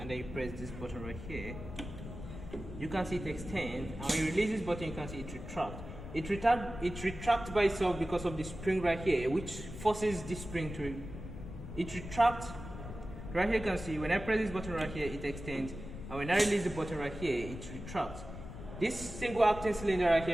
then you press this button right here. You can see it extend, and when you release this button you can see it retract. It retracts by itself because of the spring right here, which forces this spring to retract. Right here you can see when I press this button right here it extends, and when I release the button right here it retracts. This single acting cylinder right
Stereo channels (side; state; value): left; noise; rumble, 10 dB below the sound